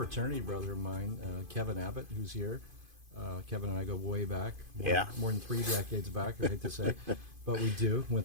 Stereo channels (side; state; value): left; late; 2.5 ms